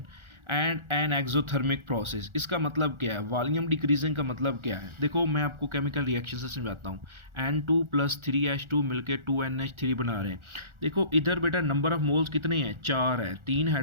and an exothermic process. इसका मतलब क्या है? वॉल्यूम डिक्रीजिंग का मतलब क्या है? देखो मैं आपको केमिकल रिएक्शन से समझाता हूँ। N2 + 3H2 मिलकर 2NH3 बना रहे हैं। देखो इधर बेटा नंबर ऑफ मोल्स कितने हैं? 4 है, 3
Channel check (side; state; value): left; late; 1.4 ms